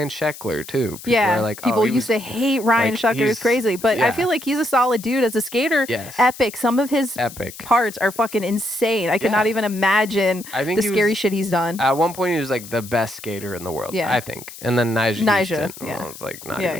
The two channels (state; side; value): noise; left; hiss, 15 dB below the sound